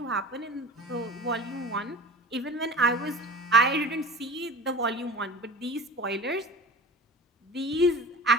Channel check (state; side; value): normal; both; correlation 0.37